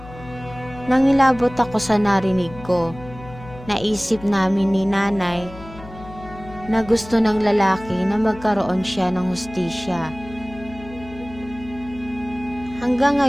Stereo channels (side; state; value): left; noise; hum, 16 dB below the sound